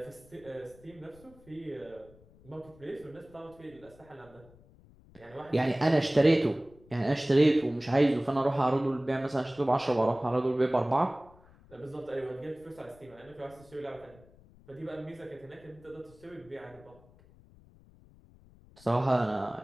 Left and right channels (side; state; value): left; noise; rumble, 25 dB below the sound